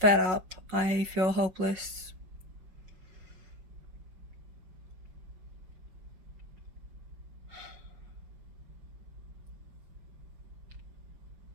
up, I feel hopeless.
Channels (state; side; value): late; left; 5.3 ms